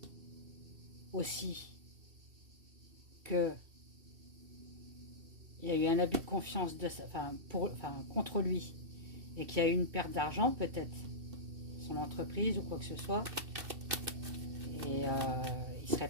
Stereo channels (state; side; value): late; left; 2.7 ms